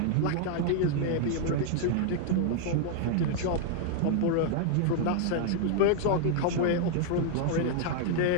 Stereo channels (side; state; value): both; different; correlation -0.01